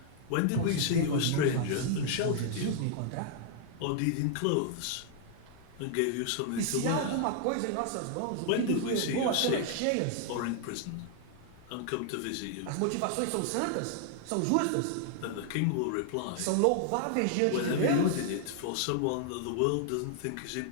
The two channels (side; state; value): both; different; correlation 0.00